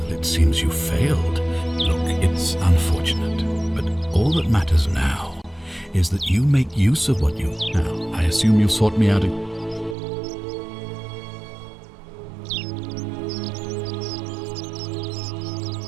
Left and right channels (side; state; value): left; drops out; at 10.0 s